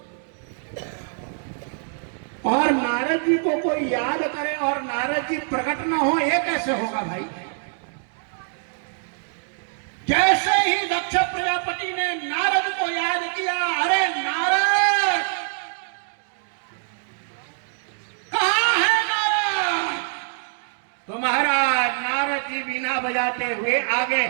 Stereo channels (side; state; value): left; silent; 62 dB below the other